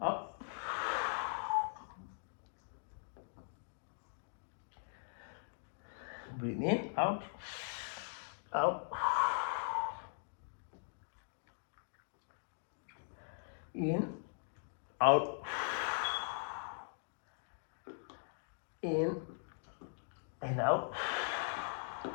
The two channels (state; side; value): silent; right; digital silence